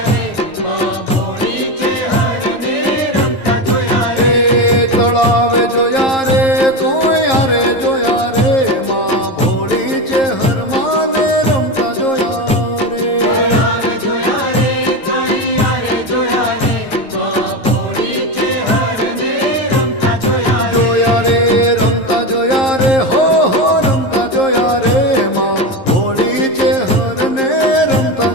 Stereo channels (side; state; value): right; late; 11 ms